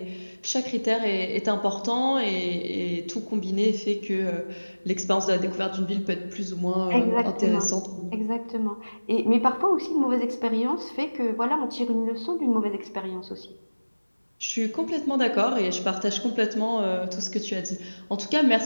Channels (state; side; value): inverted; both; correlation -1.00